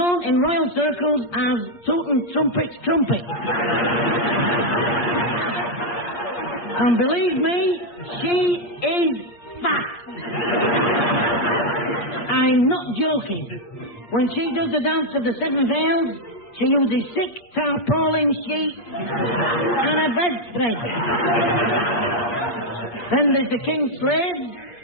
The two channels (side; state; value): right; late; 8.5 ms